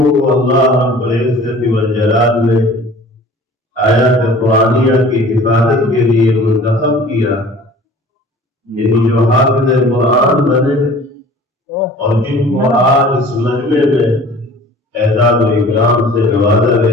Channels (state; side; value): normal; both; correlation 0.46